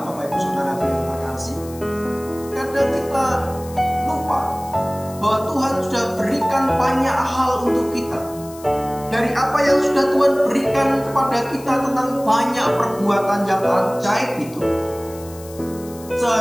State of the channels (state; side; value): noise; left; hiss, 19 dB below the sound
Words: Bapak Ibu Saudara yang terkasih. Kadang kita lupa bahwa Tuhan sudah berikan banyak hal untuk kita. Dari apa yang sudah Tuhan berikan kepada kita tentang banyak perbuatan yang ajaib itu,